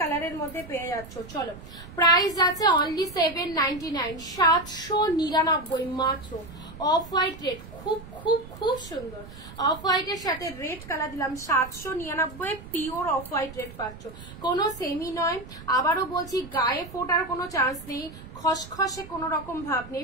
মধ্যে পেয়ে যাচ্ছ। চলো প্রাইস আছে অনলি 799, 799 মাত্র। অফ হোয়াইট রেড খুব খুব খুব সুন্দর। অফ হোয়াইটের সাথে রেড কালার দিলাম 799, পিওর অফ হোয়াইট রেড পাচ্ছ, কোনো সেমি নয়। আবারও বলছি গায়ে ফোটার কোনো চান্স নেই, খসখসে কোনো রকম ভাব নেই,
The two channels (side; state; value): right; noise; rumble, 16 dB below the sound